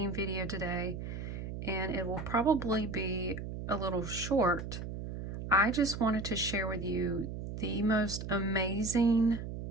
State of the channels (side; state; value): right; noise; hum, 7 dB below the sound